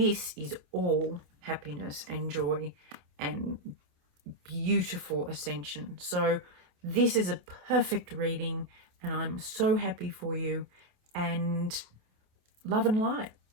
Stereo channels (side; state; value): left; late; 27 ms